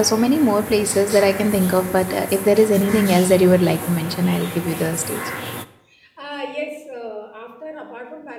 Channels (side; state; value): both; identical; correlation 1.00